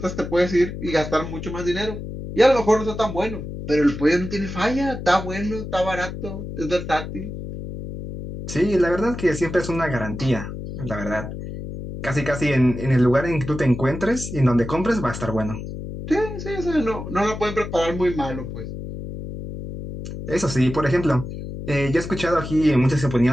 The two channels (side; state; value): left; noise; hum, 8 dB below the sound